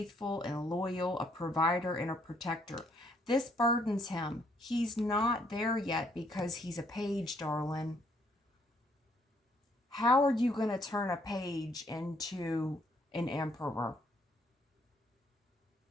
and loyal, a provider and a protector. This burdens him. He's not there yet because he's a page, darling. How are you going to turn a page into an emperor?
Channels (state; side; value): normal; both; correlation 0.68